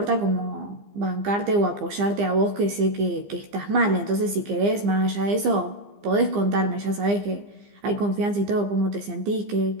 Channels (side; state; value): left; late; 15 ms